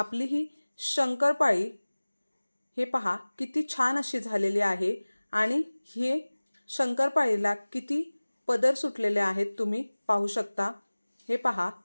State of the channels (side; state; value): both; inverted; correlation -1.00